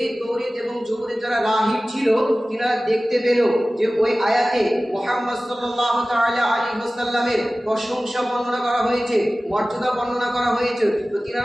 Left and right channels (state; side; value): normal; both; correlation 0.97